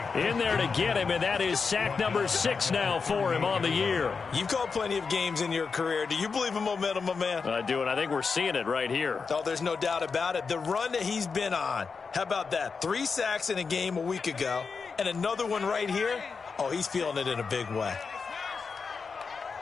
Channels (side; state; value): right; quieter; 5.1 dB